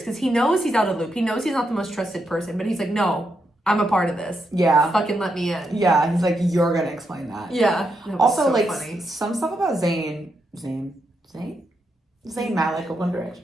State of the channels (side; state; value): both; normal; correlation 0.82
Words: because he knows he's out of the loop. He knows he's not the most trusted person, but he's like, no, I'm a part of this. Yeah. Fucking let me in. Yeah. He's like, you're going to explain that. Yeah. Also, so like funny. Some stuff about Zayn Malik of One